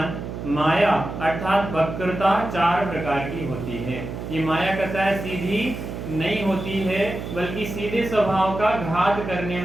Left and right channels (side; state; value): right; noise; hum, 7 dB below the sound